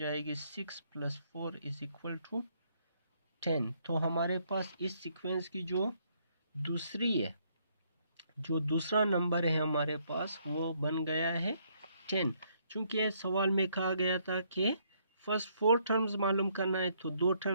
6 + 4 इज़ इक्वल टू 10। तो हमारे पास इस सीक्वेंस की जो दूसरा नंबर है हमारे पास वो बन गया है 10। चूँकि सवाल में कहा गया था कि फर्स्ट 4 टर्म्स मालूम करना है, तो 2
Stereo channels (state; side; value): inverted; both; correlation -0.70